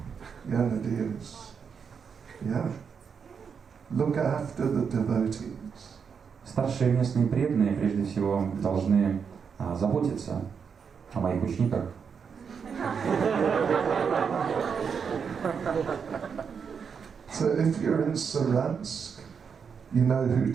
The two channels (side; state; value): left; quieter; 6.4 dB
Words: я надеюсь. Yeah. Look after the devotees. Старшие местные преданные прежде всего должны заботиться о моих учениках. So if you're in Saransk, you know who